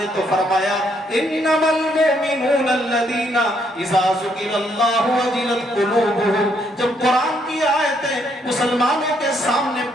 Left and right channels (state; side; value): normal; both; correlation 0.72